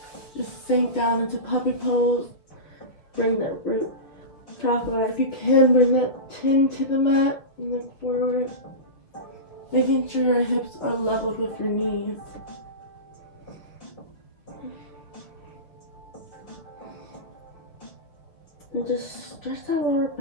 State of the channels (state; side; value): late; right; 6.4 ms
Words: Just sink down into puppy pose. Bring that root chakra. If you can, bring that chin to the mat and look forward. Making sure your hips are leveled with your knees. And just stretch that lower